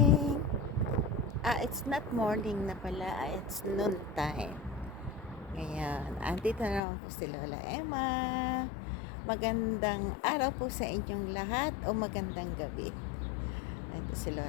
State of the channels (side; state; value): right; drops out; at 6.8 s